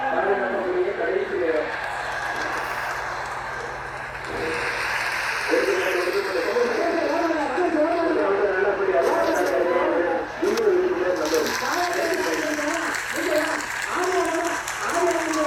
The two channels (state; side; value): identical; both; correlation 1.00